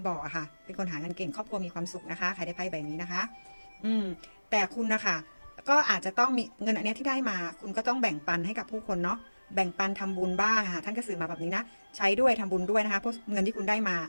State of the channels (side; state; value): both; inverted; correlation -1.00